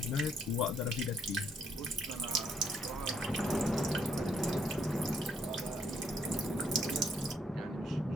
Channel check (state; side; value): normal; both; correlation 0.70